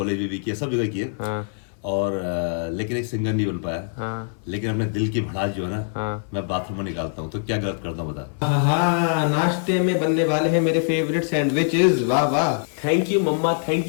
में भी किए, सब जगह किए। और लेकिन एक सिंगर नहीं बन पाया। लेकिन अपने दिल की भड़ास जो है ना, मैं बाथरूम में निकालता हूँ। तो क्या गलत करता हूँ बता। हाँ, नाश्ते में बनने वाले हैं मेरे फेवरेट सैंडविचेस। वाह वाह, थैंक यू मम्मा, थैंक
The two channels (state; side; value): silent; right; 60 dB below the other